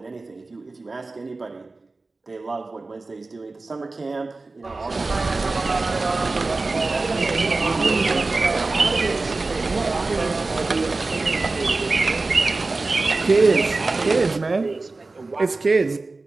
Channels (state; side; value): quieter; left; 3.5 dB